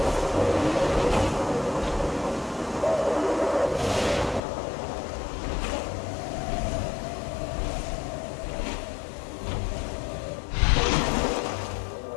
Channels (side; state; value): right; drops out; at 4.4 s